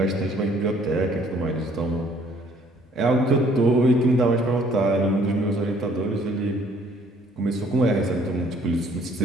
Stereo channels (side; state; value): both; normal; correlation 0.60